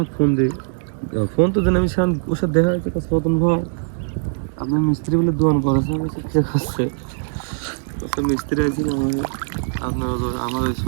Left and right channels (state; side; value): silent; left; digital silence